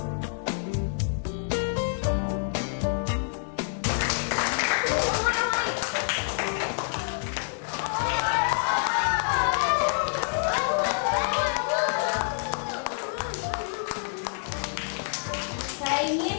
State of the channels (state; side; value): silent; right; digital silence